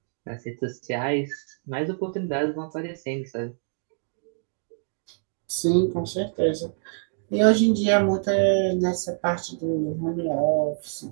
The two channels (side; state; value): left; silent; digital silence